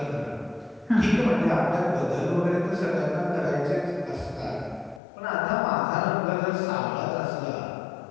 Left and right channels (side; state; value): right; drops out; at 5.0 s